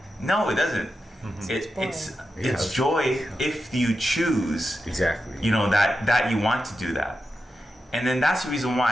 No, it doesn't. Mm-hmm. It's joy if you choose. Exactly. You know, that you want to do that. And then that's the reason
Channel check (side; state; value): both; normal; correlation 0.89